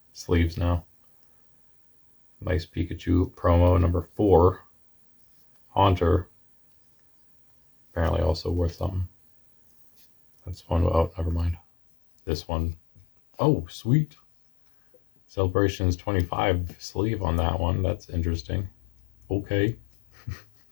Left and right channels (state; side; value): drops out; right; at 11.6 s